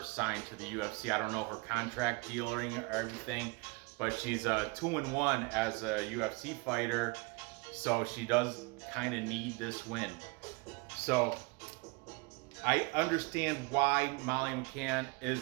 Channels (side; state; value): left; quieter; 28.1 dB